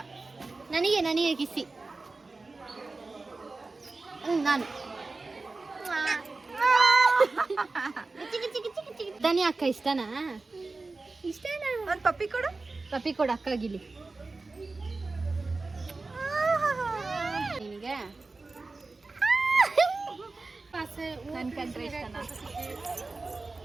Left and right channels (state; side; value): quieter; left; 3.6 dB